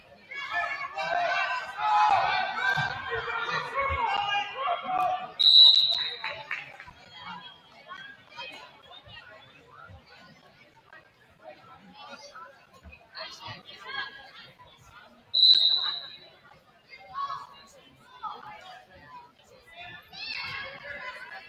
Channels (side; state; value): both; identical; correlation 1.00